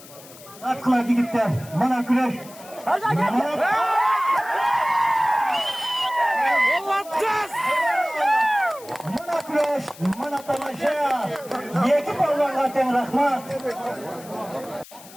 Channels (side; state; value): left; noise; hiss, 19 dB below the sound